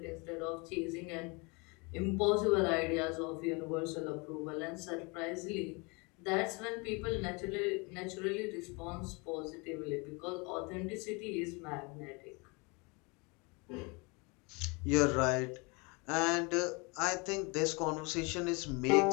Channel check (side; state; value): right; quieter; 29.3 dB